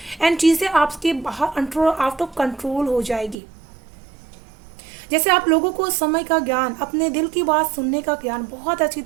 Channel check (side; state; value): left; drops out; at 3.4 s